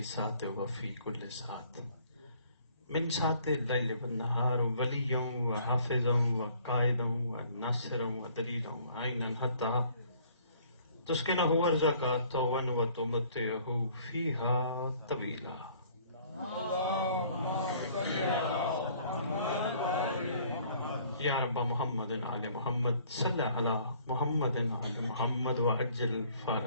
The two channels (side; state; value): both; inverted; correlation -0.58